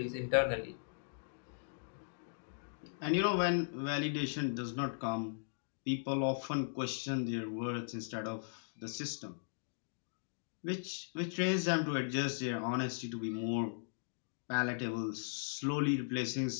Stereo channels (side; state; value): right; silent; digital silence